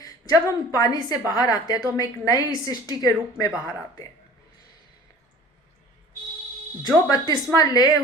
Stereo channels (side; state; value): both; normal; correlation 0.45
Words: जब हम पानी से बाहर आते हैं तो हम एक नई सृष्टि के रूप में बाहर आते हैं। जो बपतिस्मा ले